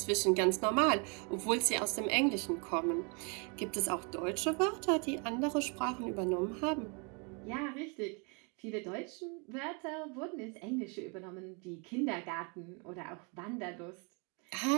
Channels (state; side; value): quieter; left; 34.9 dB